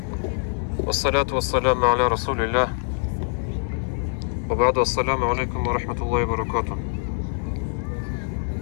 والصلاة والسلام على رسول الله وبعد. السلام عليكم ورحمة الله وبركاته.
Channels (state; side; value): silent; right; 62 dB below the other